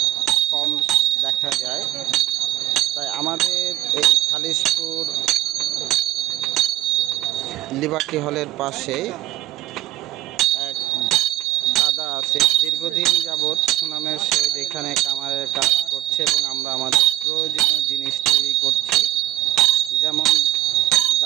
কম দেখা যায়। তাই আমাদের এই খালিশপুর লিবার্টি হলের পাশে এক দাদা আছে, দীর্ঘদিন যাবৎ সুনামের সহিত এখানে কামারের কাজ করছে এবং আমরা আমাদের প্রয়োজনীয় জিনিস তৈরি করছি, যেমন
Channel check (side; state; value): left; quieter; 14.9 dB